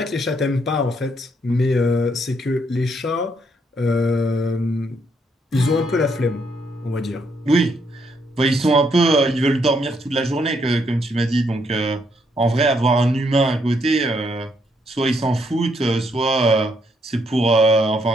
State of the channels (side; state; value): both; normal; correlation 0.74